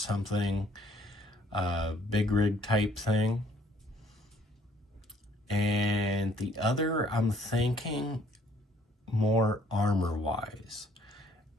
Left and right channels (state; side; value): normal; both; correlation 0.62